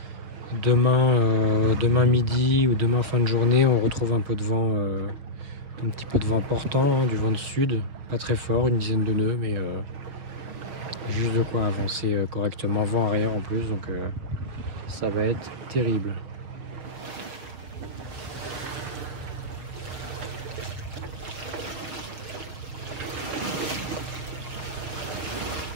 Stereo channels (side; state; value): left; late; 6.6 ms